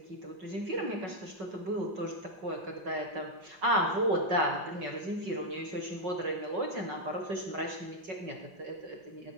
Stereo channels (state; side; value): late; left; 5.4 ms